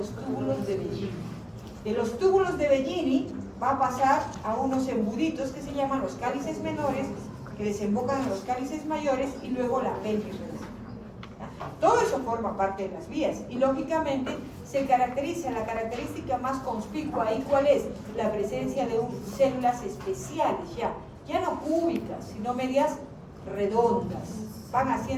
túbulos de Bellini. De los túbulos de Bellini va a pasar a unos embuditos que se llaman los cálices menores, que desembocan en los cálices mayores, y luego la pelvis renal. Todo eso forma parte de las vías y lógicamente se caracteriza, la característica más conspicua ahí, ¿cuál es? La presencia de células especiales, ya no cúbicas, sino medias redondas, van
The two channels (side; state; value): both; identical; correlation 1.00